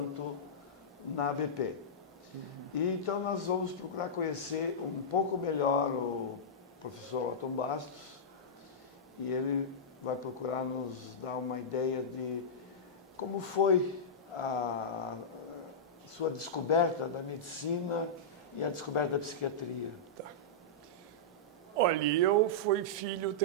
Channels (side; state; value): both; normal; correlation -0.13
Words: na ABP. E então nós vamos procurar conhecer um pouco melhor o professor Otton Bastos, e ele vai procurar nos dar uma ideia de como foi a sua descoberta da medicina e a descoberta da psiquiatria. Tá. Olha, eu fui filho